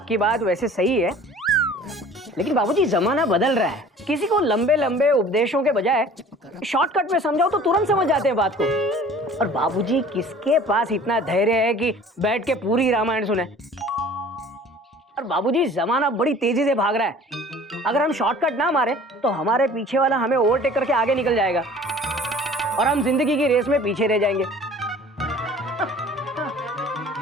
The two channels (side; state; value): both; normal; correlation 0.47